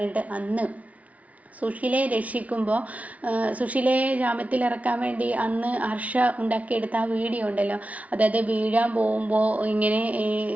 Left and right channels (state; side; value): late; left; 0.068 ms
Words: അന്ന് സുശീലയെ രക്ഷിക്കുമ്പോൾ, സുശീലയെ ജാമ്യത്തിലിറക്കാൻ വേണ്ടി അന്ന് ഹർഷ ഉണ്ടാക്കിയെടുത്ത ആ വീഡിയോ ഉണ്ടല്ലോ, അതായത് വീഴാൻ പോകുമ്പോൾ ഇങ്ങനെ